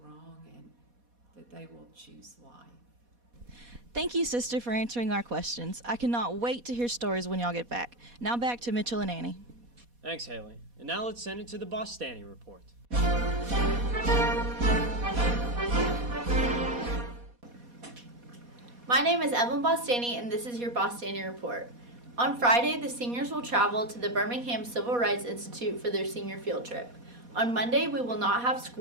and that they will choose life. Thank you, Sister, for answering our questions. I cannot wait to hear stories when y'all get back. Now back to Mitchell and Annie. Thanks, Haley. And now let's send it to the Bostani Report. My name is Evelyn Bostani, and this is your Bostani Report. On Friday, the seniors will travel to the Birmingham Civil Rights Institute for their senior field trip. On Monday, we will not have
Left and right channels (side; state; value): left; late; 4.2 ms